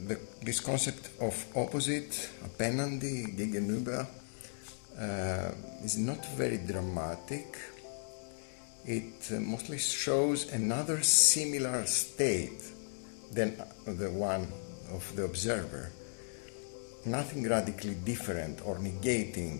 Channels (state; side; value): silent; right; digital silence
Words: This concept of opposite, appenandi, gegenüber, is not very dramatic. It mostly shows another similar state than the one of the observer. Nothing radically different or